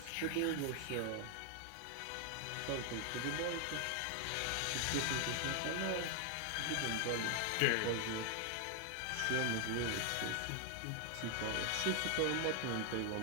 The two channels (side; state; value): both; different; correlation 0.00